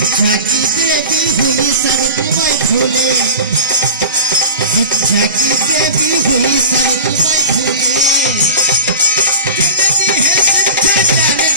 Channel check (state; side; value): inverted; both; correlation -0.33